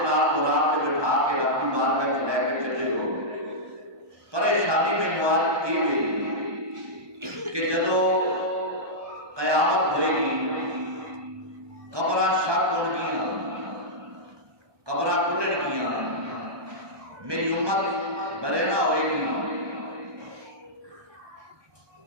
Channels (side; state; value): left; late; 1.2 ms